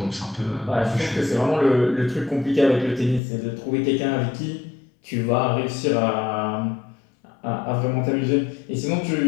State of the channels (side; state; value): right; drops out; at 3.2 s